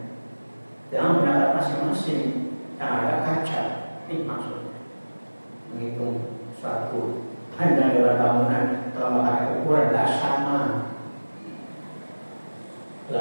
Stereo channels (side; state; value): both; inverted; correlation -1.00